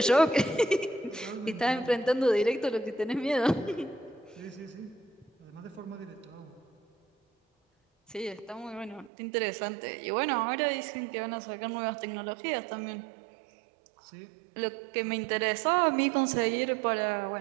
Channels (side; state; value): left; drops out; at 9.1 s